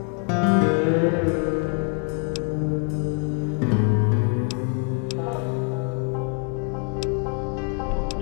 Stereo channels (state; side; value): quieter; right; 36.1 dB